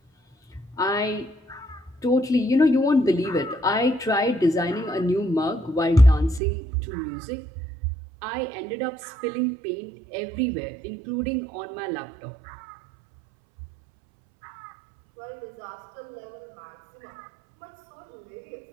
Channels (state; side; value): drops out; left; at 6.4 s